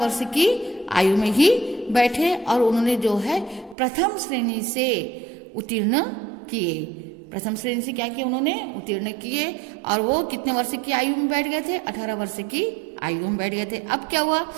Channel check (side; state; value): left; drops out; at 3.8 s